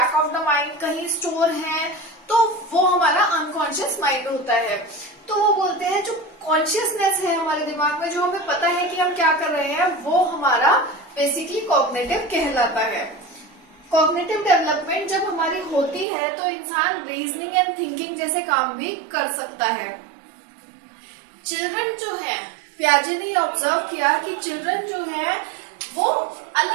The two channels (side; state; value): left; drops out; at 16.1 s